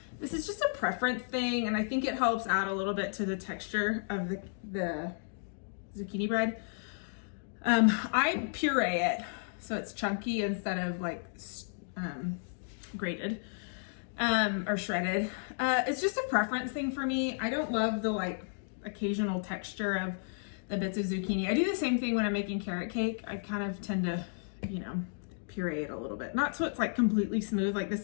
this is just a preference thing, and I think it helps add a little bit to the texture of the zucchini bread. I puree it, so it's chunky instead of like grated or shredded. It's just a preference thing for me. I don't love the like occasional texture of the bits of zucchini. I do the same thing when I'm making carrot cake. I kind of tend to, you know, puree it a little bit. Not so it's like completely smooth, like this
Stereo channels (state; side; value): silent; right; digital silence